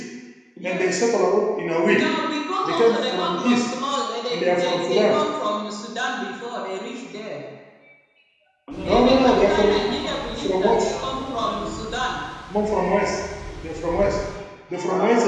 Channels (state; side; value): identical; both; correlation 1.00